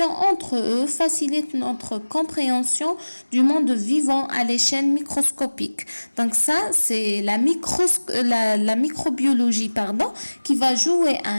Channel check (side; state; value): both; inverted; correlation -1.00